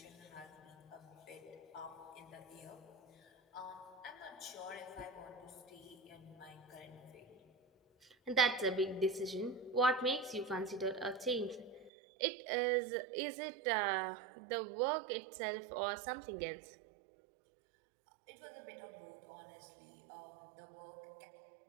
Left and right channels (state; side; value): drops out; left; at 11.9 s